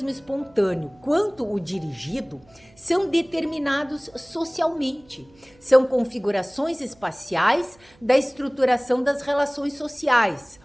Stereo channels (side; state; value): right; noise; hum, 30 dB below the sound